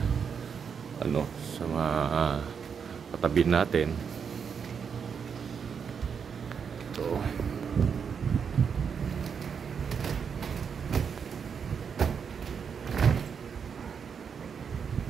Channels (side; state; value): left; quieter; 6.7 dB